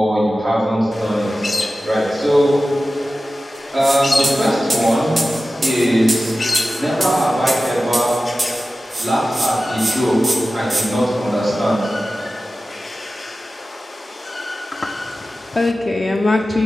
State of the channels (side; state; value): both; normal; correlation 0.95